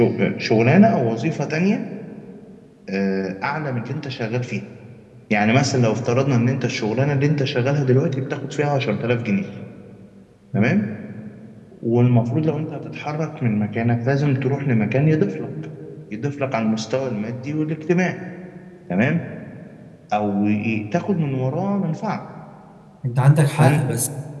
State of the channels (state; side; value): identical; both; correlation 1.00